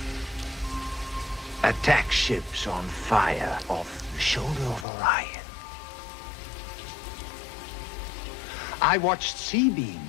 Attack ships on fire off the shoulder of Orion. I watched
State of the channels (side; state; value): right; drops out; at 4.9 s